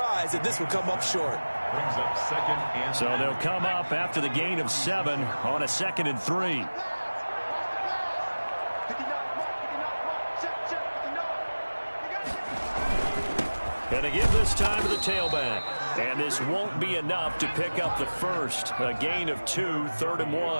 that this would come up short. Brings up 2nd and 3. So they'll come up after the gain of 7 on a 2nd and 3. And they give this time to the tailback. And this won't be enough to pick up the first. A gain of 2, 3rd and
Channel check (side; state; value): both; inverted; correlation -1.00